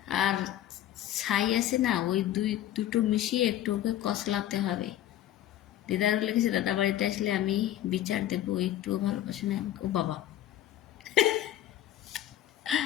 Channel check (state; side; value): quieter; right; 12.6 dB